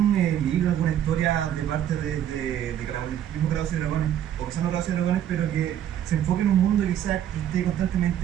libro, alguna historia de parte de mismo Calabozos y Dragones, o quizás no Calabozos y Dragones, pero que se enfoque en un mundo que quizás esté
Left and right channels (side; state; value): left; quieter; 10.5 dB